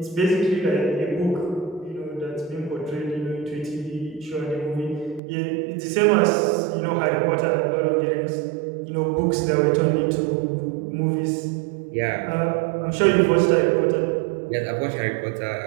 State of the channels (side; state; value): left; drops out; at 5.2 s